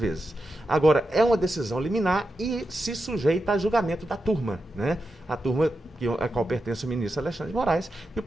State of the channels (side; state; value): both; normal; correlation 0.89